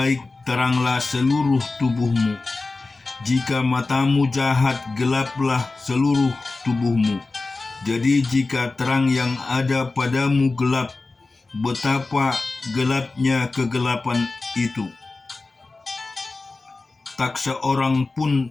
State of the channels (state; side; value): quieter; right; 3.5 dB